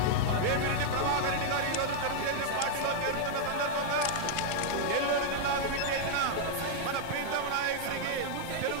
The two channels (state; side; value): different; both; correlation -0.01